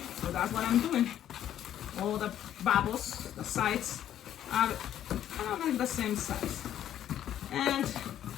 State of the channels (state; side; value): quieter; right; 11.1 dB